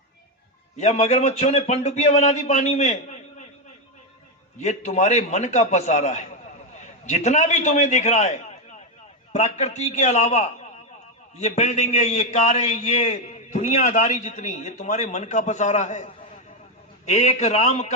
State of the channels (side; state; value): both; normal; correlation 0.06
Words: या मगरमच्छों ने पनडुब्बियां बना दी पानी में? ये तुम्हारे मन का पसारा है। जितना भी तुम्हें दिख रहा है प्रकृति के अलावा, ये बिल्डिंगें, ये कारें, ये दुनियादारी जितनी, ये तुम्हारे मन का पसारा है। एक राम